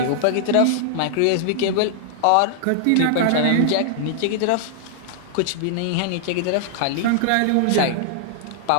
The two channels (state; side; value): different; both; correlation -0.01